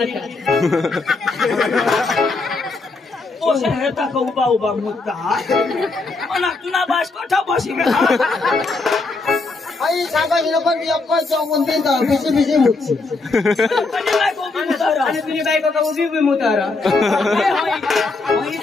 पोषा हेता का उभा मुद्दा मना तुना बास कोठा बसी आई सांगायला पण यप्पा चौकून देता बिसी मुक्ती पण काय को मुतारा आणि तुझी बायको का उभी मुतारा होई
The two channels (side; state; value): right; quieter; 3.6 dB